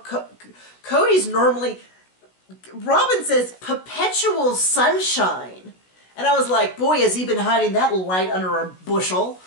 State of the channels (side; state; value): right; late; 16 ms